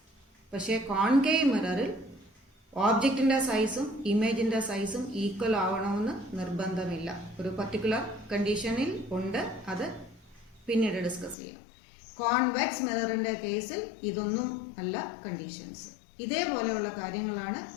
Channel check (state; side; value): drops out; right; at 11.4 s